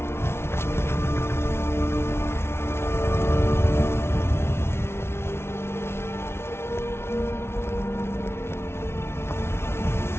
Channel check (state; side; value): late; right; 0.12 ms